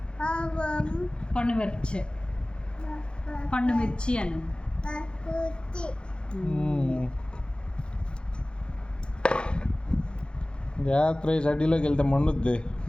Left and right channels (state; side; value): late; right; 0.052 ms